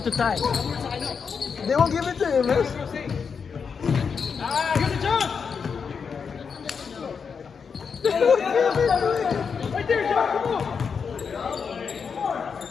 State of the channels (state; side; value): quieter; right; 6.0 dB